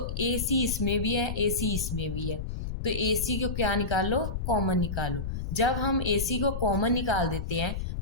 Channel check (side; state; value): left; noise; rumble, 4 dB below the sound